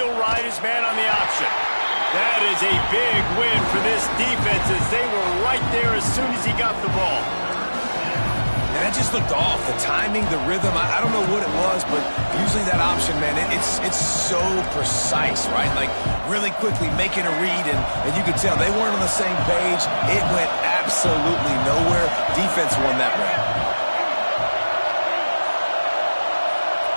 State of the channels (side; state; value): both; inverted; correlation -1.00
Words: ride his man on the option. That is a big win for this defense as they were right there as soon as he got the ball. And that just looked off. The timing, the rhythm, I don't know what it was, but usually that option, man, it's so precise, right? Like, really quickly making a read, and you could tell they weren't on the same page. It went absolutely nowhere. Defense won that one.